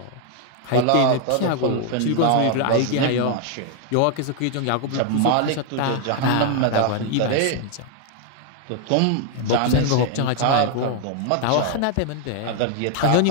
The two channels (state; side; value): different; both; correlation 0.00